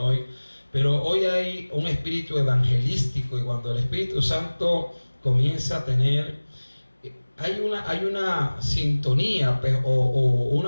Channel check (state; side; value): inverted; both; correlation -1.00